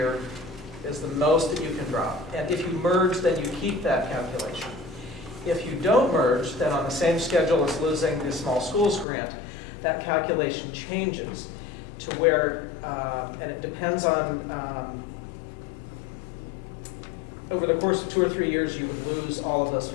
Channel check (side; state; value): right; drops out; at 9.1 s